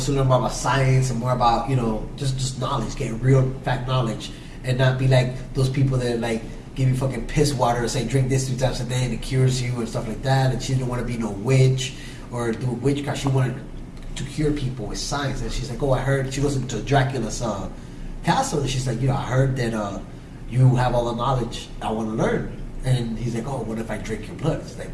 to learn more about science and more about just knowledge, get real fact knowledge, and not be like those people that like give you fucking piss water and say drink this 3 times a day and it cures you and stuff like that. And she didn't want to be no witch or do witchcraft. She wanted to cure people with science. And she's like, oh, I heard. She goes into Dracula's castle and she's like, I heard that you have all the knowledge I want to learn. And he's like, oh, what if I drink your blood? It's like,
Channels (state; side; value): identical; both; correlation 1.00